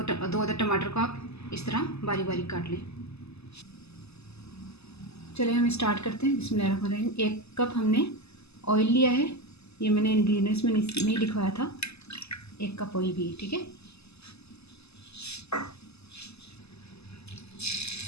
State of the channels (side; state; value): right; late; 0.79 ms